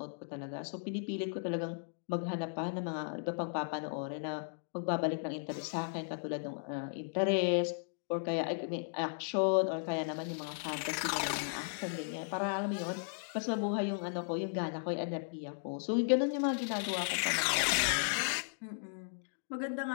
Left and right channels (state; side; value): silent; right; digital silence